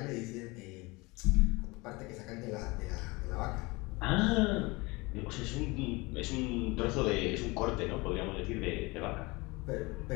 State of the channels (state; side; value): quieter; right; 24.4 dB